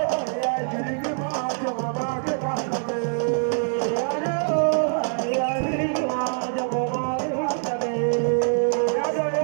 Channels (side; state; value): left; silent; 62 dB below the other